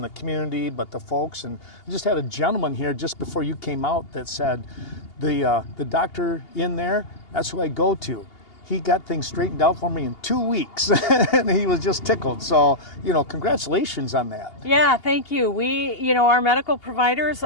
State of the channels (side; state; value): right; late; 2.8 ms